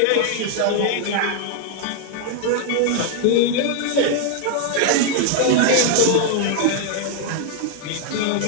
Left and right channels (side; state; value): both; different; correlation 0.00